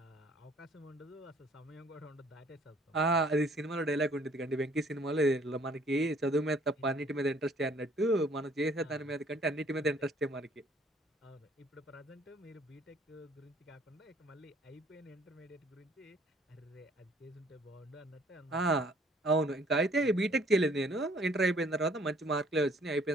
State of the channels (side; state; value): both; normal; correlation 0.60